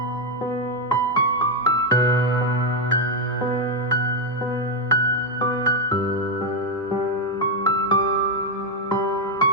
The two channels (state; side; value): normal; both; correlation 0.04